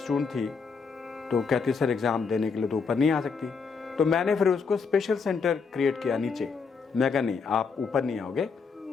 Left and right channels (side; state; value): right; quieter; 5.3 dB